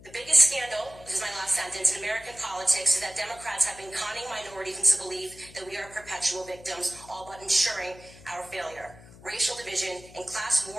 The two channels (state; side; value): noise; left; hum, 20 dB below the sound